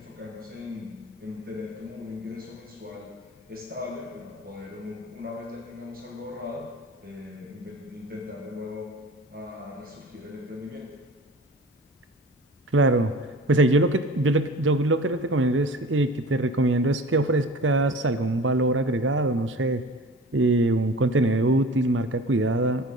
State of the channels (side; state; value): both; normal; correlation 0.39